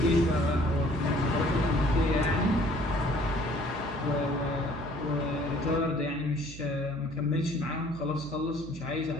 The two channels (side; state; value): right; noise; hum, 15 dB below the sound